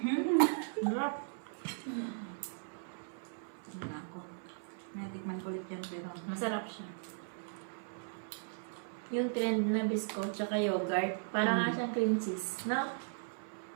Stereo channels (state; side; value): silent; left; 53 dB below the other